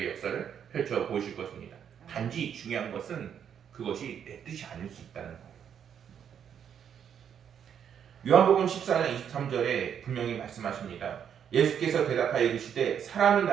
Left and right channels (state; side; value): quieter; left; 8.4 dB